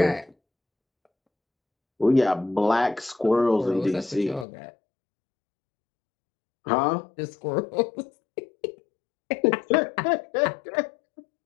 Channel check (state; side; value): drops out; right; at 4.5 s